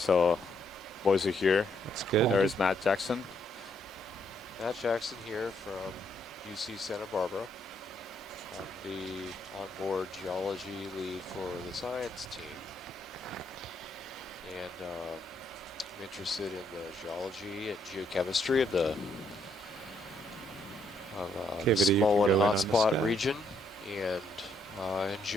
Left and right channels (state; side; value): normal; both; correlation 0.72